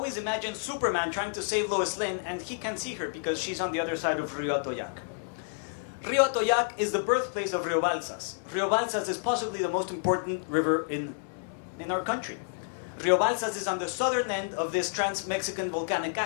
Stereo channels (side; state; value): right; silent; digital silence